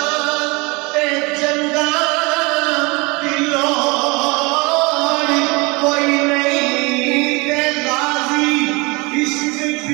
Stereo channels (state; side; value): quieter; left; 26.9 dB